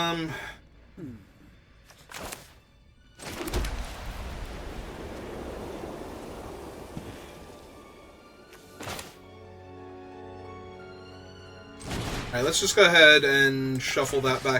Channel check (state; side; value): identical; both; correlation 1.00